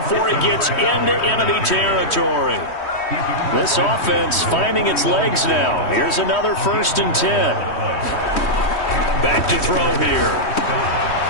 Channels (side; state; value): right; late; 3.1 ms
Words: he gets into enemy territory. This offense finding its legs now. Here's another 1st and 10. Back to throw here.